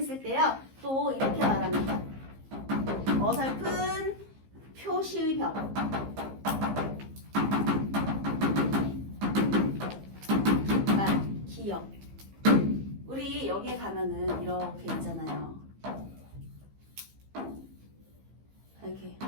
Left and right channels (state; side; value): late; left; 15 ms